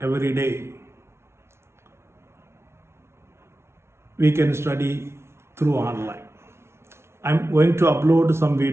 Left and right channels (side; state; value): left; late; 0.13 ms